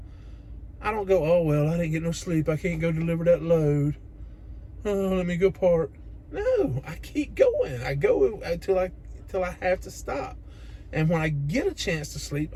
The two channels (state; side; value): identical; both; correlation 1.00